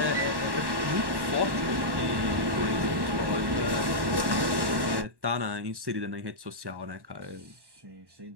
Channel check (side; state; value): left; late; 1.1 ms